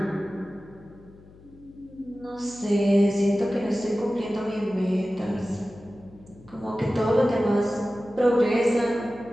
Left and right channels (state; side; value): noise; left; hum, 23 dB below the sound